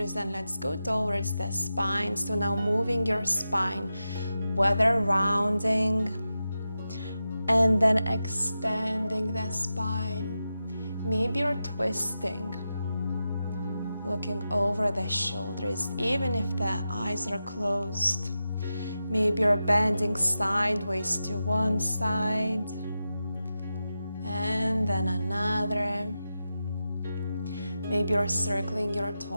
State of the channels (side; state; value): both; inverted; correlation -0.91